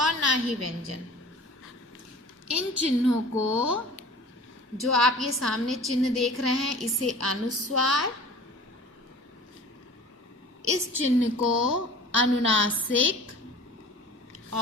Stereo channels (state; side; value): normal; both; correlation 0.42